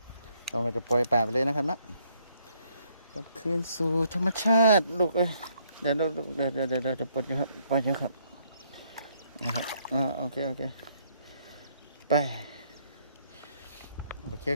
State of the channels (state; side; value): inverted; both; correlation -0.70